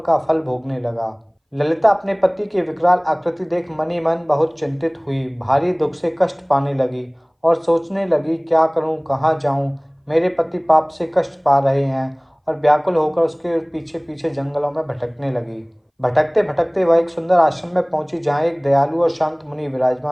फल भोगने लगा। ललिता अपने पति की विकराल आकृति देख मनी मन बहुत चिंतित हुई। भारी दुख से कष्ट पाने लगी और सोचने लगी, क्या करूं, कहाँ जाऊं। मेरे पति पाप से कष्ट पा रहे हैं। और व्याकुल होकर उसके पीछे पीछे जंगलों में भटकने लगी। भटकते भटकते वह एक सुंदर आश्रम में पहुंची, जहाँ एक दयालु और शांत मुनि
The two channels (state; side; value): identical; both; correlation 1.00